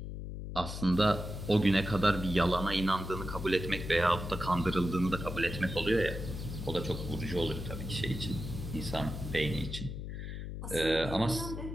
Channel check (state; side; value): noise; left; hum, 7 dB below the sound